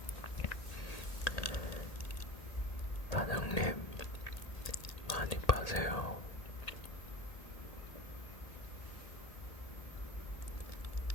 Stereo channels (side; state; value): right; late; 1.8 ms